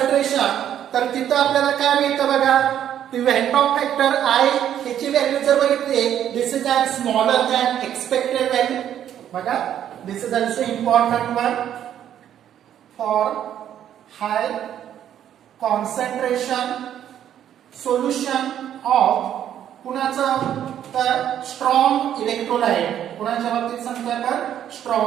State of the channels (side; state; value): left; quieter; 10.4 dB